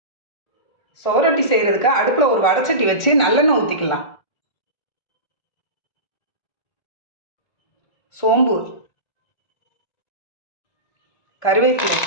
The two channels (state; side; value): late; right; 1.4 ms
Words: சோரொட்டி செய்கிறதுக்கு அடுப்பில் ஒரு வடைச்சட்டி வச்சு நல்லெண்ணெய் ஊற்றிக்கலாம். சோம்பு, கருவேப்பிலை,